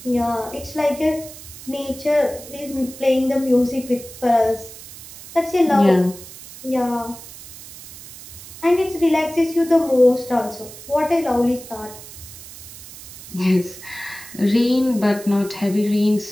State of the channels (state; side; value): noise; right; hiss, 16 dB below the sound